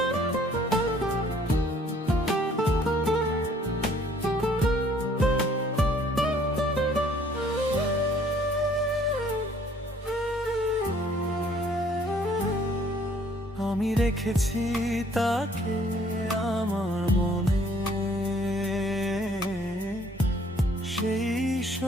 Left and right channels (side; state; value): both; normal; correlation 0.60